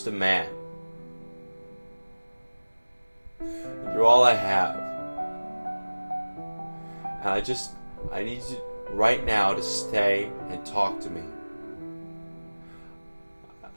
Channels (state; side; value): inverted; both; correlation -1.00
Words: a man. You're all I have. And I need you right now to stay and talk to me.